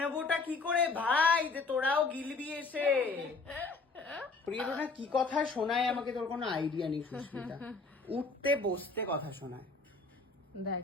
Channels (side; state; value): right; quieter; 4.0 dB